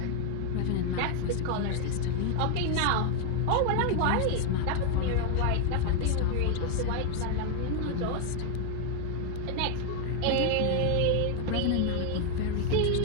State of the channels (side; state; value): both; different; correlation 0.01